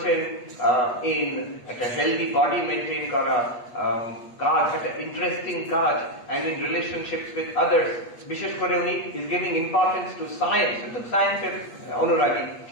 in একটা হেলদি বডি মেনটেন করা কাজ, একটা ইন্টারেস্টিং কাজ, and in relationships with others, বিশেষ করে উনি is giving importance to science, to সায়েন্সের অনুরাগী।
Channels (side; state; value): right; late; 8.4 ms